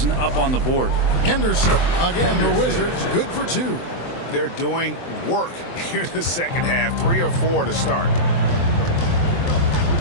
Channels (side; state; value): right; late; 23 ms